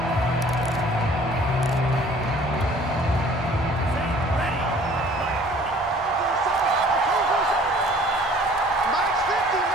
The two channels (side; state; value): both; normal; correlation 0.52